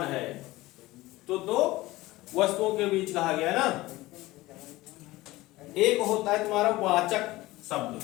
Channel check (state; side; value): quieter; right; 18.9 dB